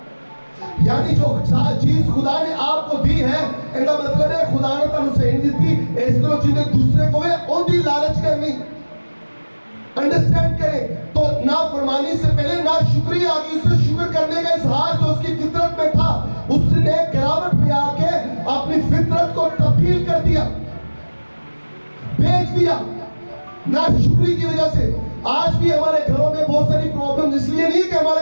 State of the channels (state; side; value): inverted; both; correlation -1.00